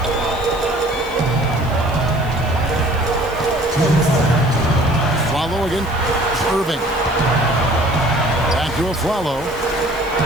Follow again. Irving. Back to a follow.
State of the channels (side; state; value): right; noise; hiss, 23 dB below the sound